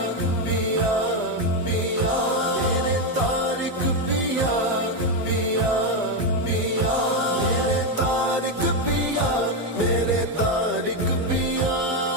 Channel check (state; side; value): normal; both; correlation 0.07